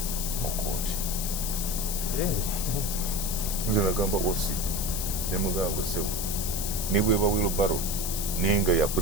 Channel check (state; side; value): noise; left; hiss, 3 dB below the sound